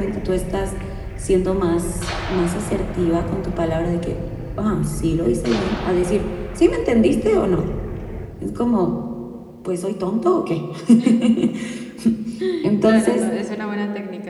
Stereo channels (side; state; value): both; identical; correlation 1.00